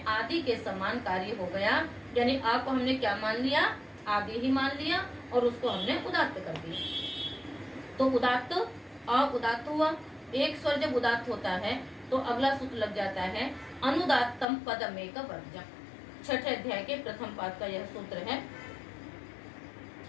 आदि के समान कार्य हो गया, यानी अ को हमने क्या मान लिया, आदि ही मान लिया और उसको हमने उदात्त कर दिया। तो उदात्त अ उदात्त हुआ। एक स्वर जब उदात्त होता है तो अगला सूत्र लग जाता है अनुदात्तम पदमेक वर्जम। छठे अध्याय के प्रथम पाद का यह सूत्र है,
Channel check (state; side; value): drops out; right; at 14.5 s